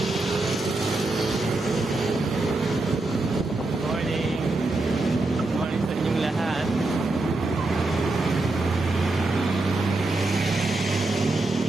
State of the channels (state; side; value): quieter; left; 3.0 dB